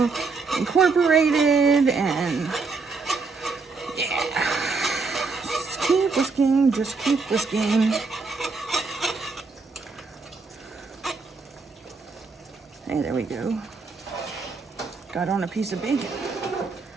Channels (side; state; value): left; quieter; 4.3 dB